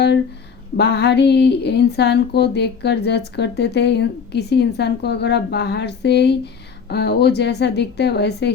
बाहरी इंसान को देखकर जज करते थे, किसी इंसान को अगर आप बाहर से ही वो जैसा दिखता है वैसे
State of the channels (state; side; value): quieter; right; 6.2 dB